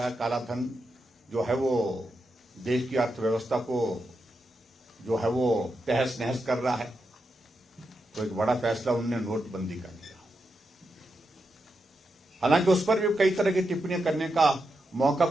है, काला धन जो है वो देश की अर्थव्यवस्था को जो है वो तहस नहस कर रहा है। तो एक बड़ा फैसला उन्होंने नोटबंदी का लिया। हालांकि उस पर भी कई तरह की टिप्पणियां करने का मौका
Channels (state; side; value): normal; both; correlation 0.86